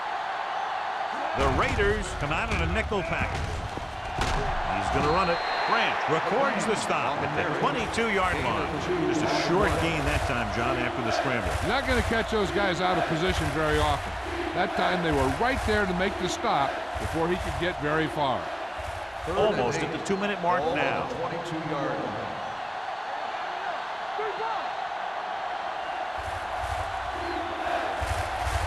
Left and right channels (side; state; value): both; identical; correlation 1.00